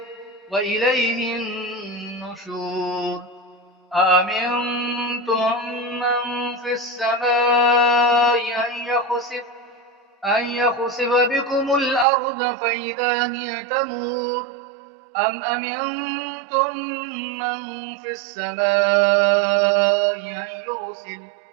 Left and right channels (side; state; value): left; drops out; at 12.1 s